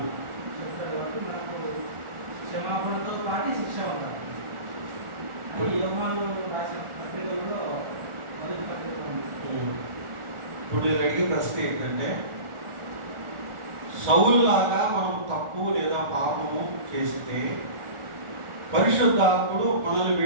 చెప్తాడు కాబట్టి మనకు క్షమాపణతో పాటు శిక్ష ఉంటారు. అది యోహాను రాసిన పత్రికల్లో మొదటి పత్రిక ఉంది. ఇప్పుడు నేను అడిగే ప్రశ్న ఏంటంటే, సౌలులాగా మనం తప్పు లేదా పాపము చేస్తే పరిశుద్ధాత్ముడు మనల్ని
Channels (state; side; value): late; left; 1.4 ms